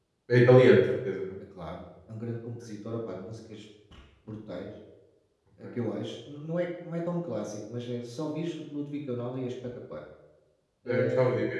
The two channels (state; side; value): identical; both; correlation 1.00